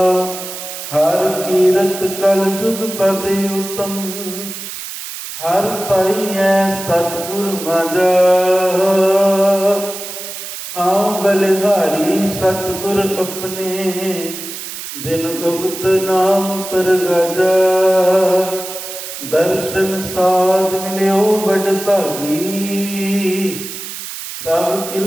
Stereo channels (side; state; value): right; noise; hiss, 9 dB below the sound